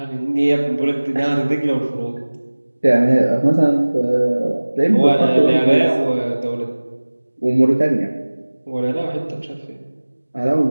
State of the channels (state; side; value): inverted; both; correlation -1.00